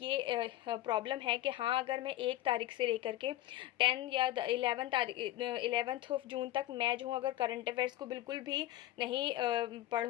प्रॉब्लम है कि हाँ, अगर मैं 1 तारीख से लेकर के 10 या 11th ऑफ जून तक मैं जो हूँ अगर करंट अफेयर्स को बिल्कुल भी नहीं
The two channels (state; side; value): quieter; right; 14.9 dB